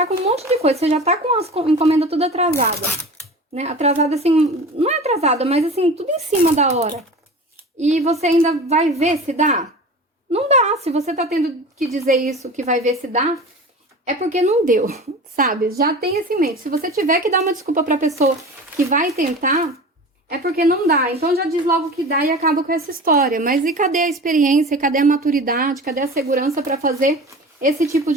com um monte de coisa, você já tá com as encomendas tudo atrasada, né? Atrasada assim, não é atrasada, mas assim, tudo em cima da hora. E você ainda vai ver se dá? Não dá. Se você tá tendo que dizer isso, que vai ver se dá, é porque não deu, sabe? Já tem isso em mente. Se você tiver que dar uma desculpa pra pessoa que vai tentar, é porque não dá. Então já diz logo que dá e acaba com essa história. Mas e cadê a experiência? Cadê a maturidade? Cadê a segurança pra fazer esse tipo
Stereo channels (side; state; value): both; normal; correlation 0.35